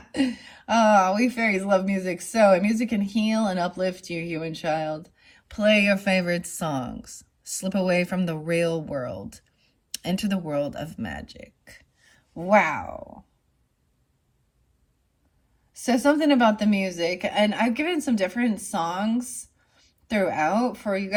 Oh, we fairies love music so. And music can heal and uplift you, human child. Play your favorite songs. Slip away from the real world. Enter the world of magic. Wow. So something about the music. And I've given some different songs throughout for you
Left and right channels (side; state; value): both; identical; correlation 1.00